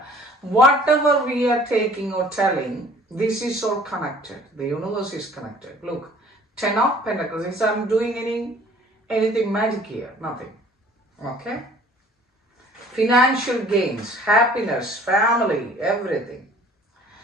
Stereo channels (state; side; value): normal; both; correlation 0.52